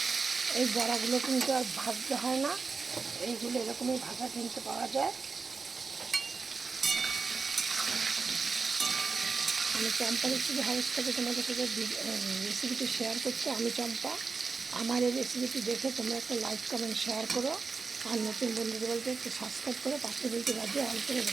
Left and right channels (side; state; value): left; quieter; 4.6 dB